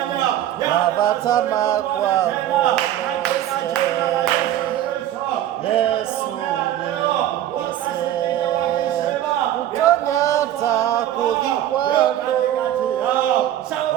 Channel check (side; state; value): left; quieter; 12.2 dB